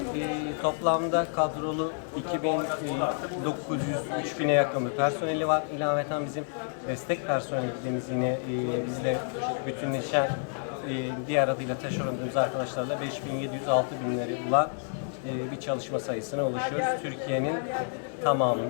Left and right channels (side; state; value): right; silent; 58 dB below the other